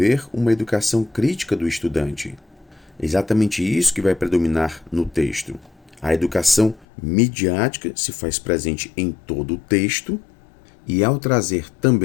uma educação crítica do estudante. Exatamente isso que vai predominar no texto. A educação midiática se faz presente em todo o texto e, ao trazer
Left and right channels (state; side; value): drops out; right; at 6.9 s